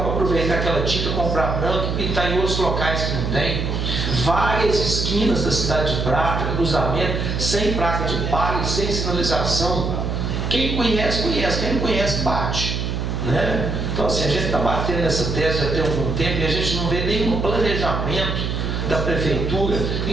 aproveitar aquela tinta, comprar branco e pintar em outros locais que não tem. Várias esquinas da cidade de Prata, cruzamento, sem placa de pare, sem sinalização. Quem conhece, conhece. Quem não conhece, bate, né? Então, assim, a gente está batendo nessa tese já tem algum tempo e a gente não vê nenhum planejamento da prefeitura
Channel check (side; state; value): right; noise; hum, 1 dB below the sound